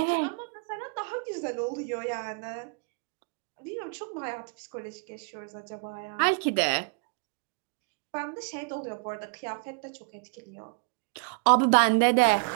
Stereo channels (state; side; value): quieter; left; 39.1 dB